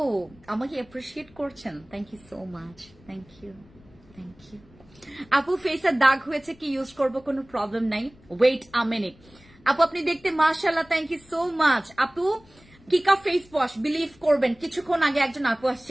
আমাকে অ্যাপ্রিশিয়েট করছেন, thank you so much, thank you, thank you. আপু ফেসের দাগ হয়েছে, কি ইউজ করবো? কোনো প্রবলেম নাই, ওয়েট আ মিনিট। আপু আপনি দেখতে মাশাআল্লাহ, থ্যাংক ইউ সো মাচ। আপু কিকা ফেস ওয়াশ, বিলিভ করবেন কিছুক্ষণ আগে একজন আপু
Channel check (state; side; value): noise; left; rumble, 27 dB below the sound